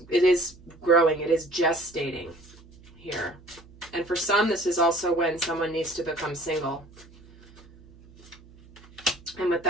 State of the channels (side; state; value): right; noise; hum, 24 dB below the sound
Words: growing, it is gestating here. And for some, this is also when someone needs to become single. And with